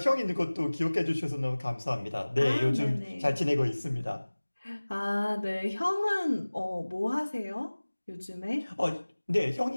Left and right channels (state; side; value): inverted; both; correlation -1.00